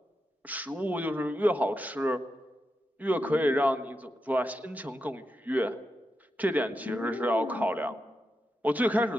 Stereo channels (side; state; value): both; normal; correlation 0.87